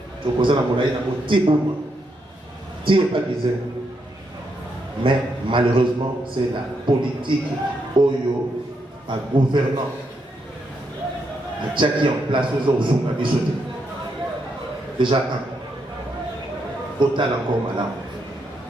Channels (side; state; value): both; normal; correlation 0.80